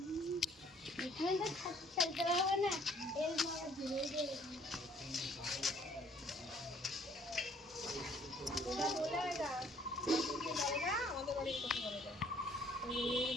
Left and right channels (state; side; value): normal; both; correlation 0.60